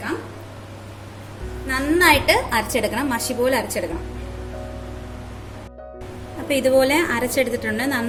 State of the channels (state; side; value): identical; both; correlation 1.00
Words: നന്നായിട്ട് അരച്ചെടുക്കണം, മഷി പോലെ അരച്ചെടുക്കണം. അപ്പോൾ ഇതുപോലെ അരച്ചെടുത്തിട്ടുണ്ട്,